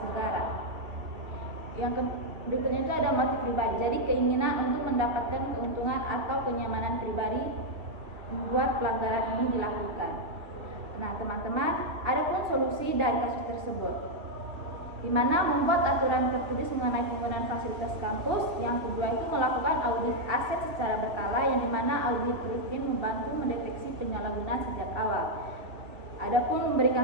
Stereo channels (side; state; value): left; late; 2.7 ms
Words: negara. Yang berikutnya itu ada motif pribadi. Jadi keinginan untuk mendapatkan keuntungan atau kenyamanan pribadi membuat pelanggaran ini dilakukan. Nah, teman-teman, ada pun solusi dari kasus tersebut, di mana membuat aturan tertulis mengenai penggunaan fasilitas kampus. Yang kedua itu melakukan audit aset secara berkala, yang dimana audit rutin membantu mendeteksi penyalahgunaan sejak awal. Adapun